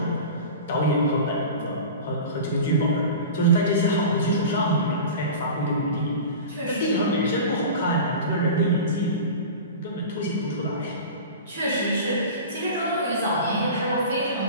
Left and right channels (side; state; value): both; inverted; correlation -0.33